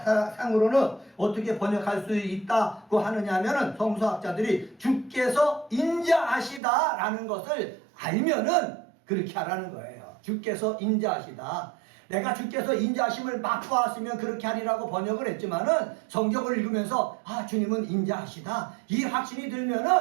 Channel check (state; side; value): drops out; left; at 6.6 s